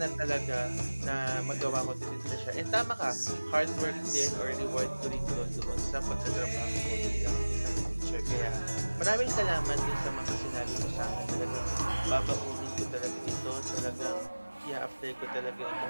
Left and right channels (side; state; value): both; inverted; correlation -1.00